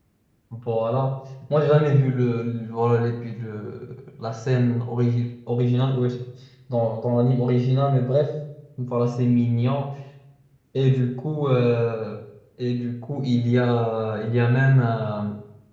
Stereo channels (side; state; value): both; identical; correlation 1.00